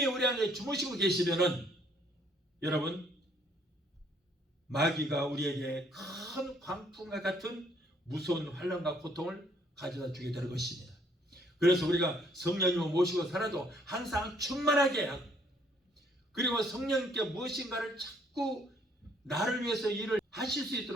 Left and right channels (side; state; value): both; normal; correlation 0.65